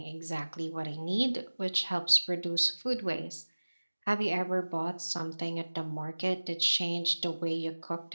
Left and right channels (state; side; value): inverted; both; correlation -1.00